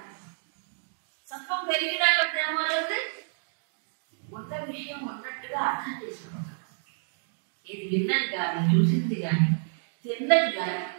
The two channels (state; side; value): silent; left; digital silence